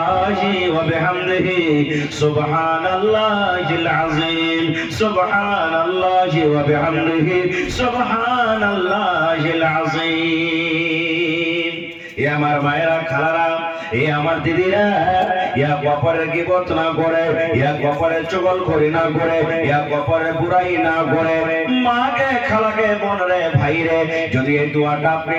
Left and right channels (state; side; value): identical; both; correlation 1.00